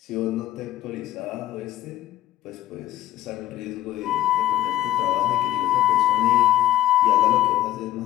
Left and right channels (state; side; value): quieter; right; 13.6 dB